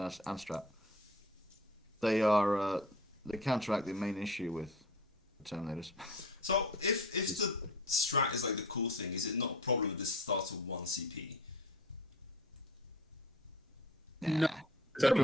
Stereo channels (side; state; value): both; normal; correlation 0.42